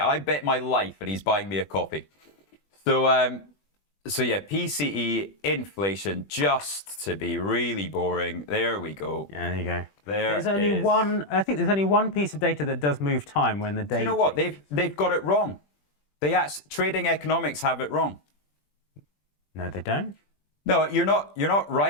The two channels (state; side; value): late; right; 20 ms